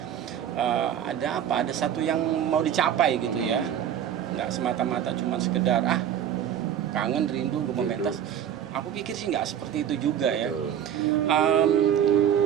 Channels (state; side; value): quieter; left; 9.7 dB